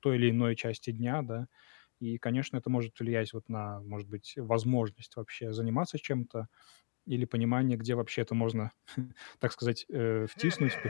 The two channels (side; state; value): right; silent; 54 dB below the other